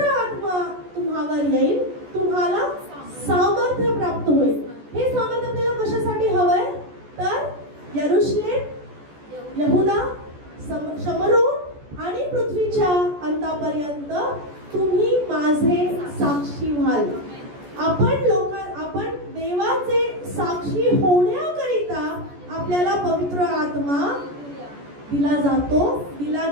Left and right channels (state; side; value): late; left; 14 ms